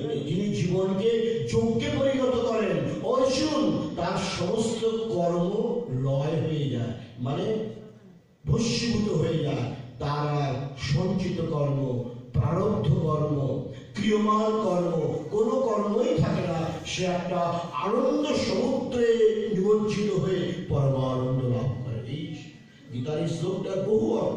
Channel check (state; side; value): identical; both; correlation 1.00